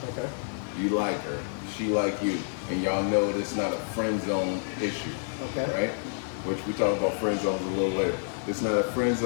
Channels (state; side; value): silent; right; digital silence